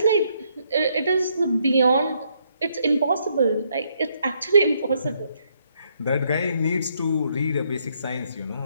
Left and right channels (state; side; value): inverted; both; correlation -0.73